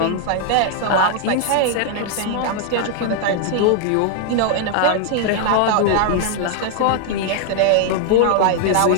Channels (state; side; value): different; both; correlation 0.00